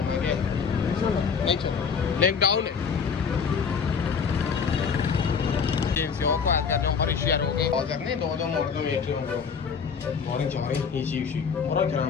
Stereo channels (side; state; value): right; quieter; 6.2 dB